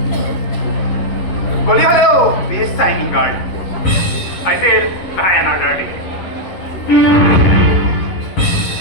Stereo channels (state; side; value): late; right; 11 ms